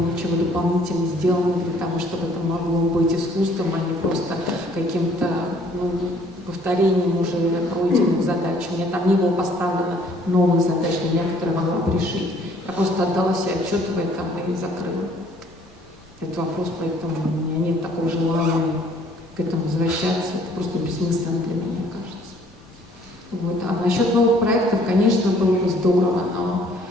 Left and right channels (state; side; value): normal; both; correlation 0.59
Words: дополнительно сделанного для того, чтобы это могло быть искусством, а не просто каким-то повторением уже пройденных задач. У меня там не было поставлено новых задач для меня, которые могла бы решить. Я просто отдала себе отчет в этом и закрыла этот вопрос, поэтому у меня нет такого желания к этому возвращаться. Это просто бессмысленно для меня, кажется. Вот. А насчет новых проектов, конечно, было бы здорово,